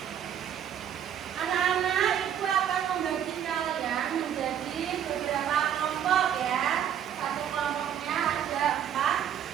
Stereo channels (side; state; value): left; quieter; 9.5 dB